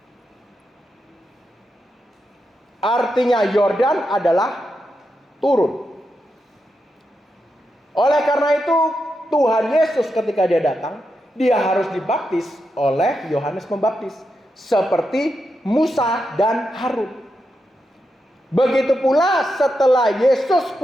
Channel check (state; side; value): normal; both; correlation 0.86